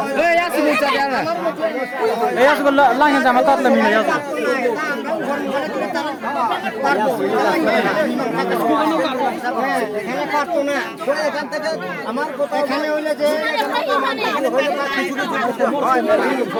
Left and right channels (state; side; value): identical; both; correlation 1.00